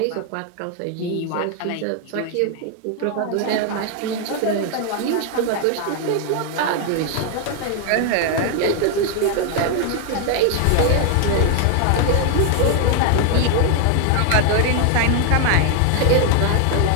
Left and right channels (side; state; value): both; different; correlation 0.00